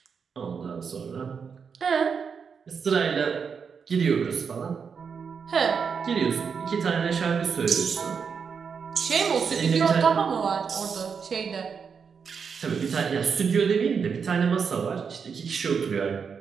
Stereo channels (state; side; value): quieter; left; 6.2 dB